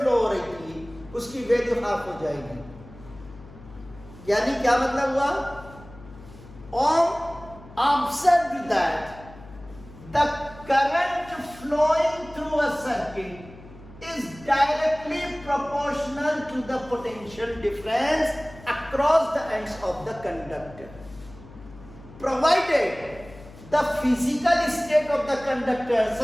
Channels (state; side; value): noise; left; hum, 19 dB below the sound